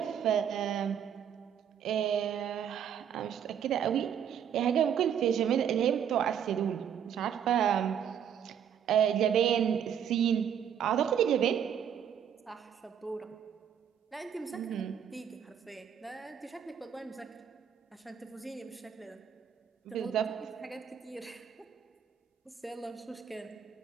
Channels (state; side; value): quieter; left; 8.7 dB